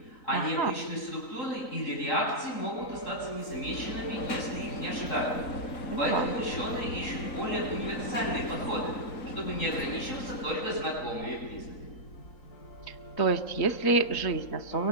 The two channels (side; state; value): right; late; 3.9 ms